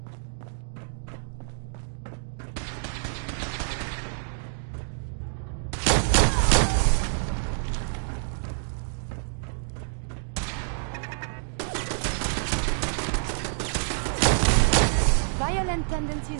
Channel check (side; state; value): left; silent; digital silence